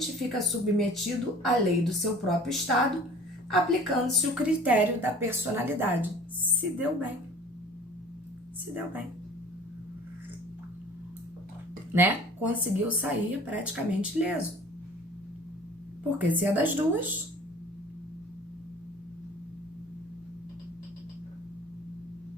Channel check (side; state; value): both; normal; correlation 0.46